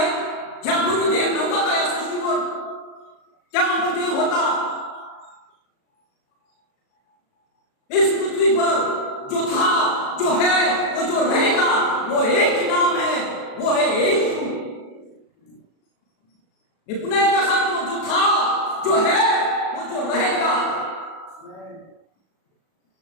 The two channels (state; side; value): late; right; 37 ms